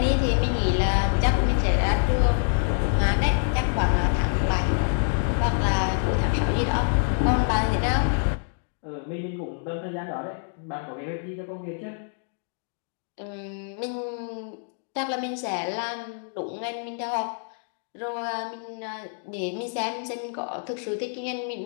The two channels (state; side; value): silent; right; 61 dB below the other